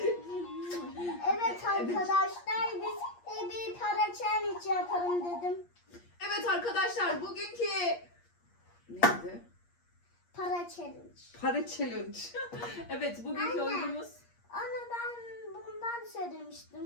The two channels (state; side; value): late; right; 8.5 ms